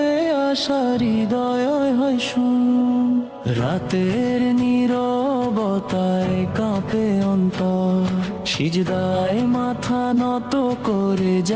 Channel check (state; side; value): identical; both; correlation 1.00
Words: আশার হৃদয় হয় শুন। রাতের নীরবতায় কাঁপে অন্তর, সিজদায় মাথা নত করে